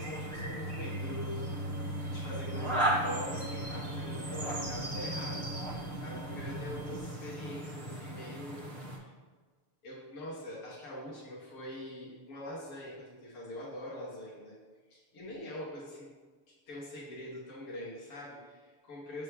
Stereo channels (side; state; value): right; late; 6.8 ms